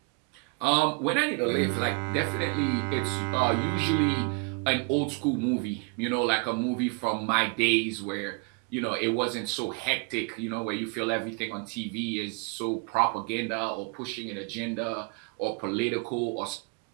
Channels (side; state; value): left; quieter; 31.6 dB